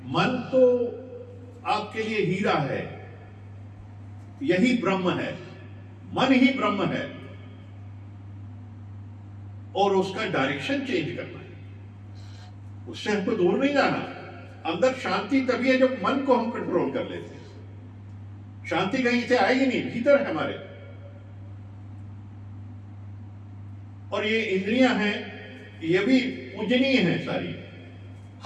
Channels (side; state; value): both; identical; correlation 1.00